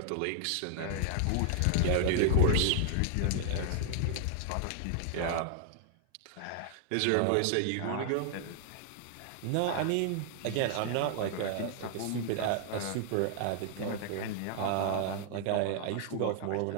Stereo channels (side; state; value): both; different; correlation -0.01